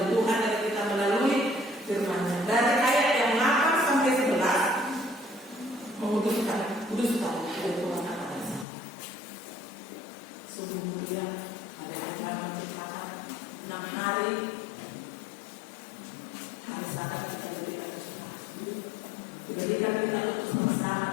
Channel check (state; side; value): drops out; right; at 8.7 s